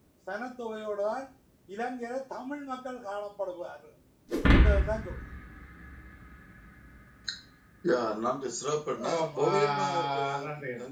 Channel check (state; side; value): identical; both; correlation 1.00